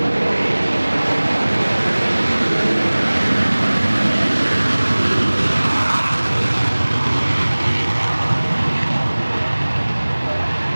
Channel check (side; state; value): both; inverted; correlation -1.00